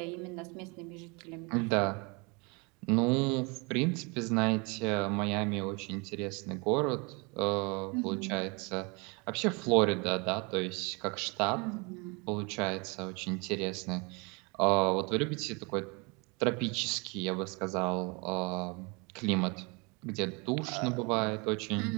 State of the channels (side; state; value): left; quieter; 29.8 dB